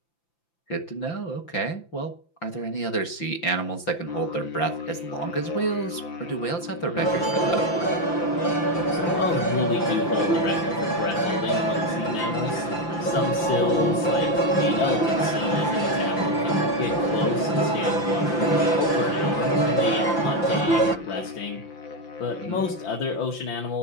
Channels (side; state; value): right; late; 5.9 ms